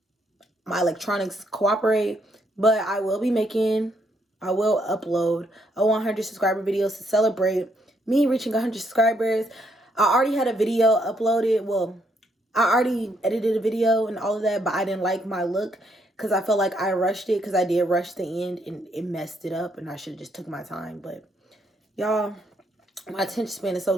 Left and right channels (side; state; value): both; normal; correlation 0.73